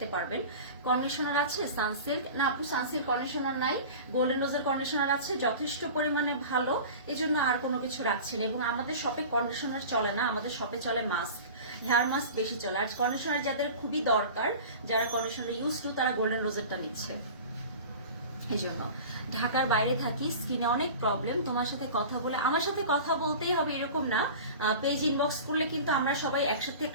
পারবেন। কন্ডিশনার আছে সানসিল্ক, না আপু সানসিল্ক কন্ডিশনার নাই, গোল্ডেন রোজের কন্ডিশনার আছে যথেষ্ট পরিমাণে ভালো, এই জন্য আর কোনো কিছু রাখছি না। এবং আমাদের শপে কন্ডিশনার চলে না, আমাদের শপে চলে মাস্ক, হেয়ার মাস্ক বেশি চলে। আর কন্ডিশনার যাদের খুবই দরকার, যারা কন্ডিশনার ইউজ টু, তারা গোল্ডেন রোজেরটা নিচ্ছে। এই জন্য ঢাকার বাইরে থাকি, স্কিনে অনেক প্রবলেম। তোমার সাথে কথা বলে, আমার সাথে কথা বলতেই হবে এরকম না, পেজ ইনবক্স করলে কিন্তু আমরা সবাই একসাথে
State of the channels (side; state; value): both; inverted; correlation -0.36